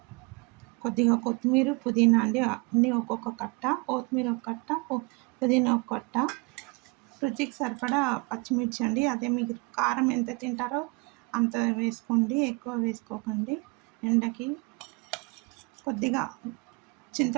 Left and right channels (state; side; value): quieter; left; 27.8 dB